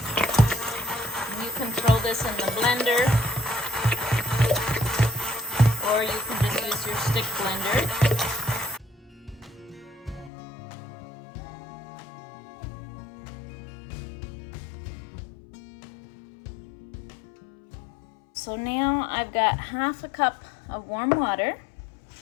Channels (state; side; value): drops out; right; at 10.3 s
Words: you can throw this in the blender, or you can just use your stick blender. So now I've got 1/2 cup of warm water,